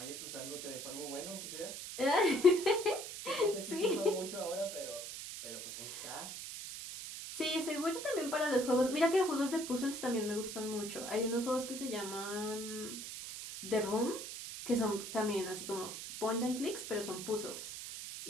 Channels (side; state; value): right; noise; hiss, 8 dB below the sound